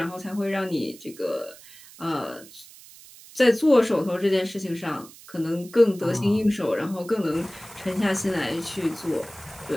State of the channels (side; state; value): right; noise; hiss, 20 dB below the sound